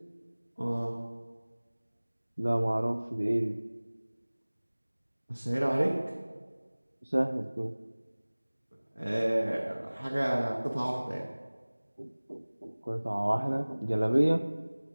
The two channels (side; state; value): both; inverted; correlation -1.00